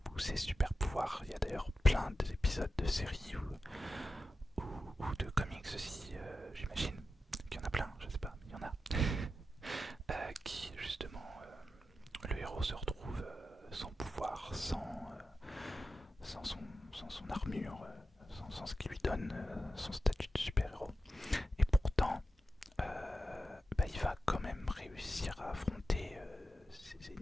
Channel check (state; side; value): normal; both; correlation 0.91